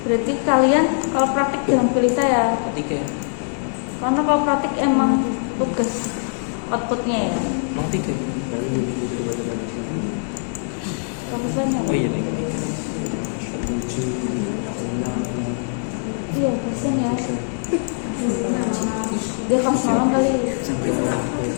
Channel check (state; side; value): silent; right; 64 dB below the other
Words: Berarti kalian kalau praktik jangan pilih saya. Tiga. Karena kalau praktik emang tugas outputnya ya. Emang 3. Kamu banyak. Oh iya nih. Iya, kasian ya. Dia kamu malam kali.